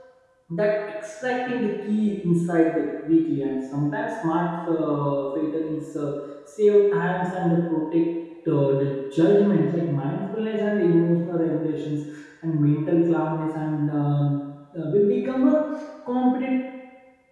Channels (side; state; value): both; identical; correlation 1.00